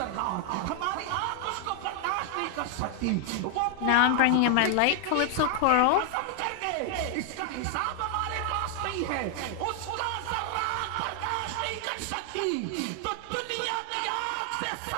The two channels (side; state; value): both; different; correlation 0.00